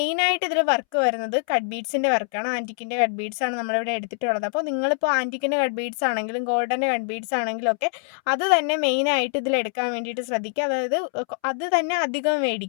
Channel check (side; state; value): right; silent; 62 dB below the other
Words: ഇതിൽ വർക്ക് വരുന്നത് കട്ട് ബീഡ്സിൻ്റെ വർക്കാണ്. ആൻറ്റിക്കിൻ്റെ കട്ട് ബീഡ്സ് ആണ് നമ്മളിവിടെ എടുത്തിട്ടുള്ളത്. അപ്പോൾ നിങ്ങളിപ്പോൾ ആൻറ്റിക്കിൻ്റെ കട്ട് ബീഡ്സ് ആണെങ്കിലും ഗോൾഡൻ്റെ കട്ട് ബീഡ്സ് ആണെങ്കിലും ഒക്കെ അത് തന്നെ മെയിനായിട്ട് ഇതിൽ എടുക്കാൻ വേണ്ടിയിട്ട് ശ്രദ്ധിക്കുക. അതായത് അത് തന്നെ അധികം